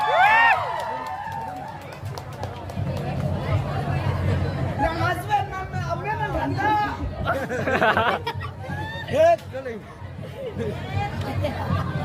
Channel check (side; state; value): both; identical; correlation 1.00